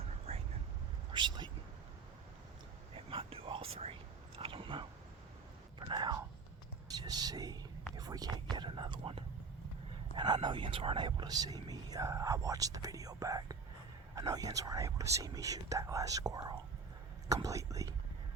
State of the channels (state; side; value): quieter; left; 4.7 dB